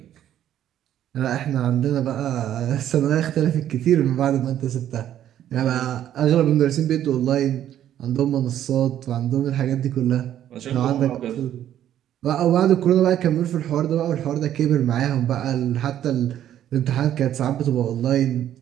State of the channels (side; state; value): left; quieter; 11.2 dB